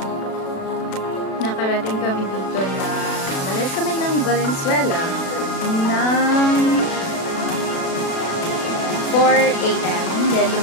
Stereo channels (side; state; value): right; late; 36 ms